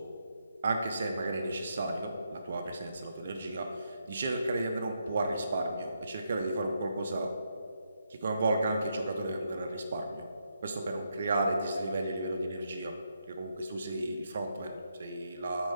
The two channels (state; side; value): inverted; both; correlation -0.80